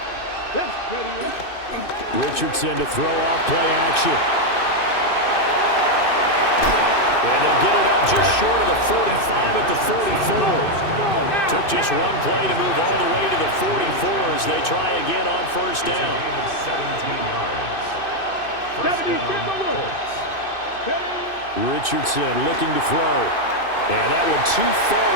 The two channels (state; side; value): late; right; 2.6 ms